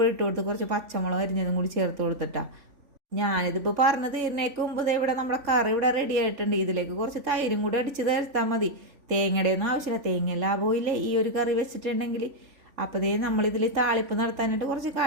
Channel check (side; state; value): left; late; 3.5 ms